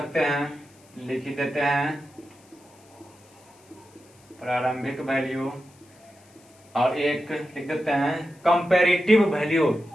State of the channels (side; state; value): left; noise; hiss, 29 dB below the sound